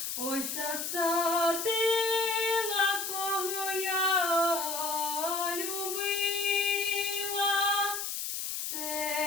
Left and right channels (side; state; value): left; noise; hiss, 3 dB below the sound